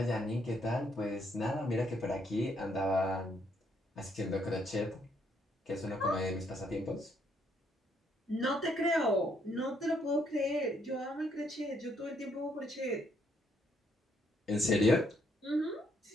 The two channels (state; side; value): normal; both; correlation 0.72